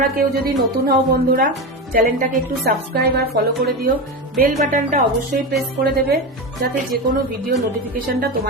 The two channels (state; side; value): normal; both; correlation 0.20